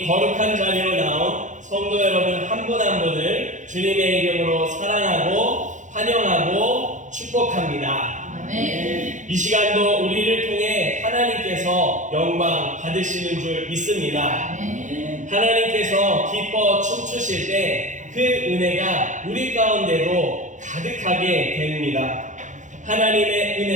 거룩한 자리로 나온 성도 여러분 한 분 한 분을 주님의 이름으로 사랑하고 환영하고 축복합니다. 아멘. 이 시간도 우리를 통해 하나님께서 영광 받으시는 줄 믿습니다. 아멘. 하나님께서 기뻐 춤추실 때 그 은혜가 우리 가운데로 가득하게 됩니다. 하나님의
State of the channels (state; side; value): late; left; 0.36 ms